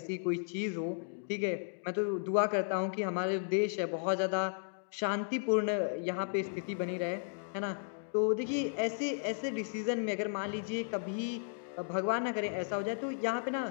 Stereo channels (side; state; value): right; silent; digital silence